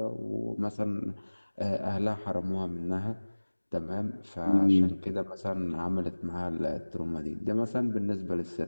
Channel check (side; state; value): both; inverted; correlation -1.00